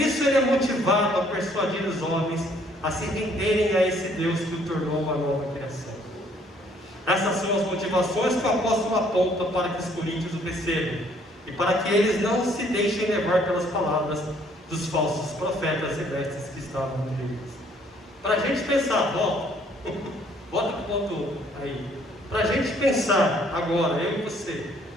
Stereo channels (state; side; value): normal; both; correlation 0.63